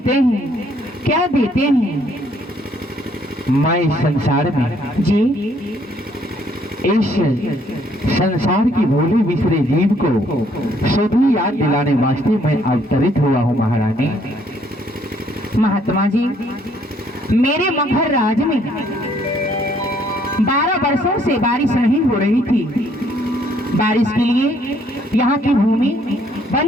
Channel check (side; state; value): both; normal; correlation 0.66